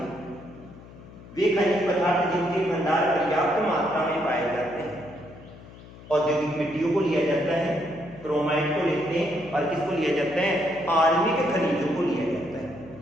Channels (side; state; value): left; noise; hum, 19 dB below the sound